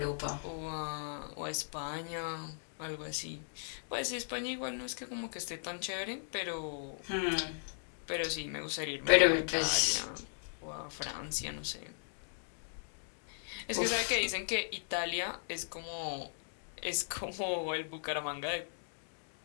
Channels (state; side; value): silent; right; digital silence